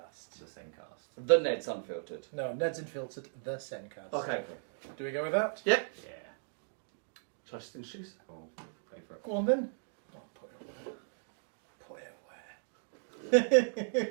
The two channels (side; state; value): left; silent; digital silence